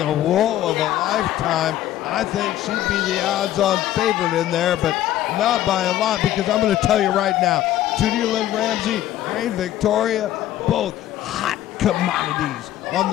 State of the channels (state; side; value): quieter; right; 13.1 dB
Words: roll of a lifetime. I think she'd be the odds-on favorite in there, but not by a lot, because I'm going to tell you right now, Tootie Lynn Ramsey, Rahne Victoria, both hot commodities on